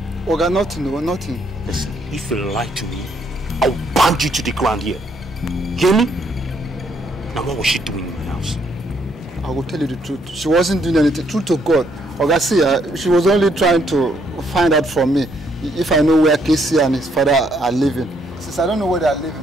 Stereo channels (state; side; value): normal; both; correlation 0.71